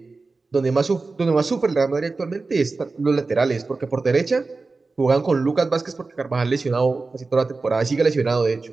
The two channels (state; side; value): quieter; left; 3.8 dB